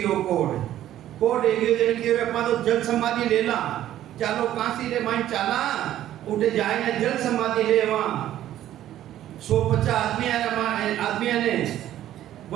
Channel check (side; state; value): left; quieter; 12.6 dB